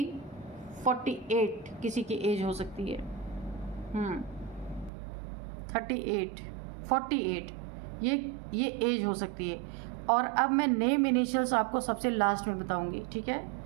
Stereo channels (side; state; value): left; drops out; at 4.9 s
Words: 48 किसी की एज हो सकती है। 38, 48 ये एज हो सकती है। और अब मैं नेम इनिशियल्स आपको सबसे लास्ट में बताऊंगी, ठीक है?